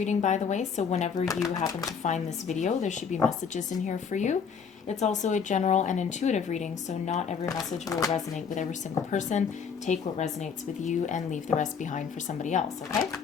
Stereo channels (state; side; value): quieter; right; 6.4 dB